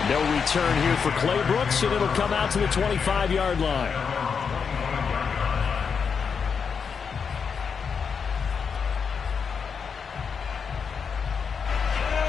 No return here for Clay Brooks, and it'll come out to the 25-yard line.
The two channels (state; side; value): quieter; right; 6.1 dB